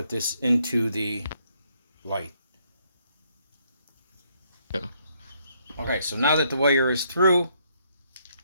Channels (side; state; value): both; inverted; correlation -0.72